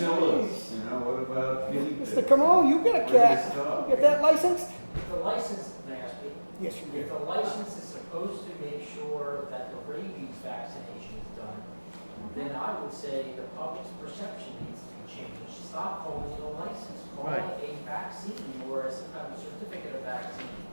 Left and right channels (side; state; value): both; inverted; correlation -1.00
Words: you know, what about guinea pigs? Mr. Comeau, you got a Where do cat. they stop? You get that licensed? If the license, may I speak? Yes, you If do. the license is supposed to make sure that the rabies vaccination is done, then I would say the public's perception needs to be changed stop calling it a license, call it a vaccine or a certificate of vaccine,